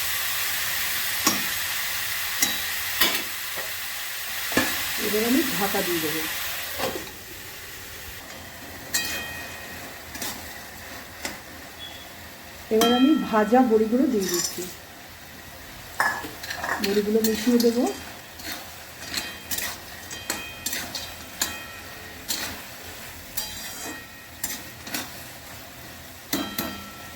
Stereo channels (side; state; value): both; identical; correlation 1.00